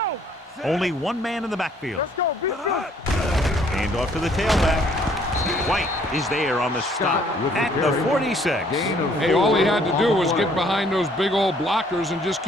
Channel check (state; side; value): normal; both; correlation 0.62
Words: Only 1 man in the backfield. Let's go. Be good. Hand off to the tailback. White is there on the stop at the 46. Hey, all he had to do was get behind those big old blockers and just